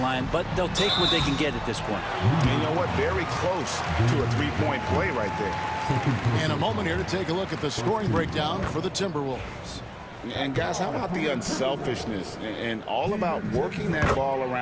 but they'll take what they can get at this point. And you know what? Very close to a three-point play right there. And a moment here to take a look at the scoring breakdown for the Timberwolves. And guys, how about the unselfishness and all about working that ball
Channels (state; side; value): identical; both; correlation 1.00